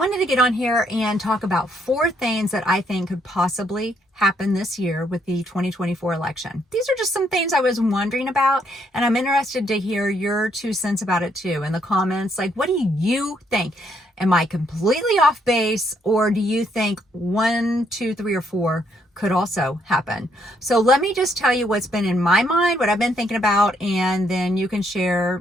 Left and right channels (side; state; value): both; normal; correlation 0.72